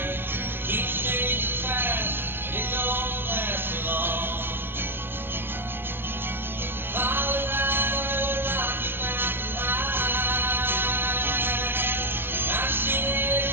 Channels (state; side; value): late; left; 0.10 ms